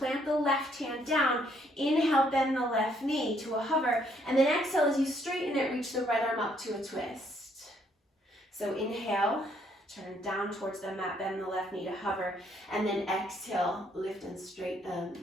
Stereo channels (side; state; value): both; normal; correlation 0.69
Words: the left hand down, inhale, bend the left knee to a hover, and then exhale as you straighten it, reach the right arm up to a twist. So inhale, turn down towards the mat, bend the left knee to hover, and then exhale, lift and straighten